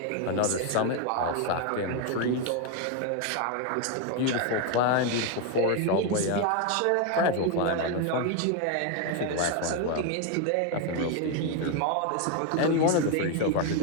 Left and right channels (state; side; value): different; both; correlation 0.01